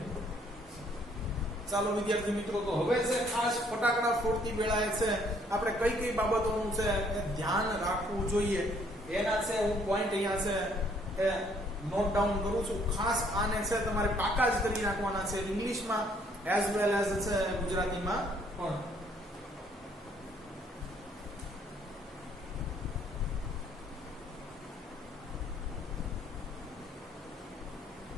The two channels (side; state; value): both; normal; correlation 0.65